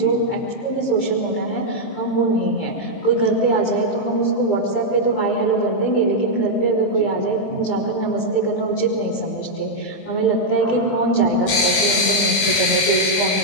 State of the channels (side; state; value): right; late; 20 ms